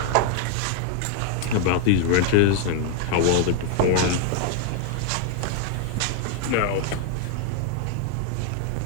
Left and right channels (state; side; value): different; both; correlation 0.01